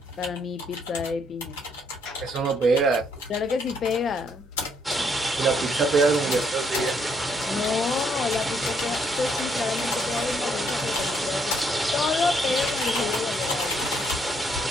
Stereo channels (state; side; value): normal; both; correlation 0.71